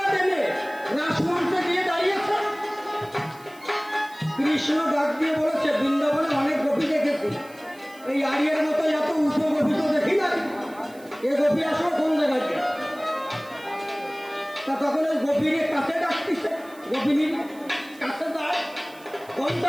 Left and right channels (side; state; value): right; noise; hiss, 24 dB below the sound